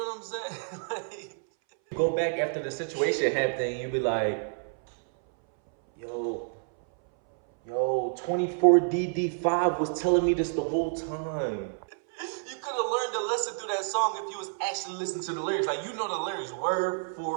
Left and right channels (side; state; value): left; silent; 59 dB below the other